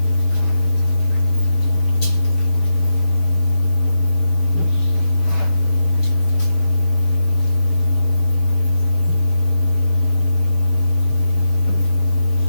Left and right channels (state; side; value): late; right; 5.9 ms